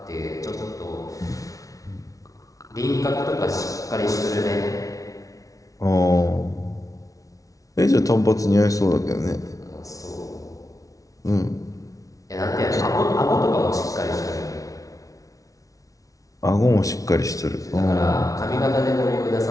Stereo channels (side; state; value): right; late; 0.17 ms